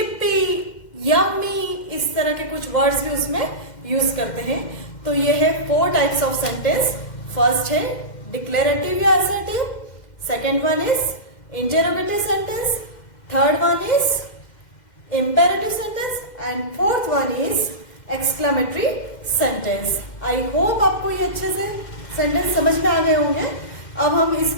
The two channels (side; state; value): right; late; 2.1 ms